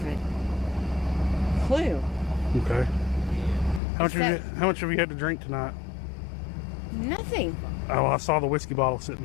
a clue. Okay. How much have you had to drink tonight? Nothing. Oh, I saw the whiskey bottle sitting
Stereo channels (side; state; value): right; drops out; at 3.8 s